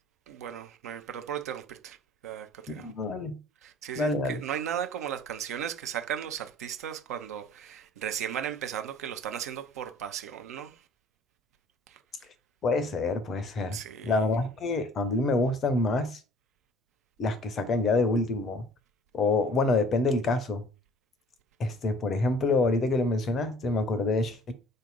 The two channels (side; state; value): both; normal; correlation 0.52